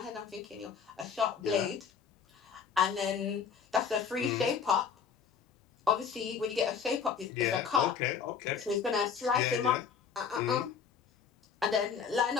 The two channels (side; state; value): right; quieter; 6.6 dB